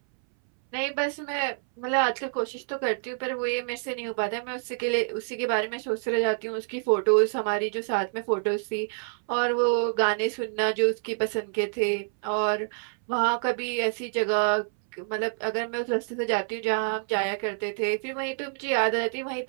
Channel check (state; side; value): silent; left; 60 dB below the other